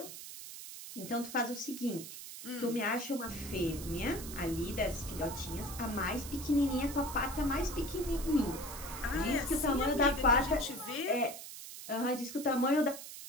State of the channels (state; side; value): noise; right; hiss, 11 dB below the sound